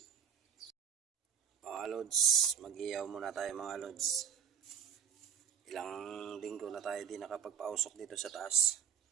Mga lods, mag-ihaw muna tayo mga lods. Ilang linggo na tayo di nakapagpausok dito sa taas.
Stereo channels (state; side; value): quieter; left; 7.5 dB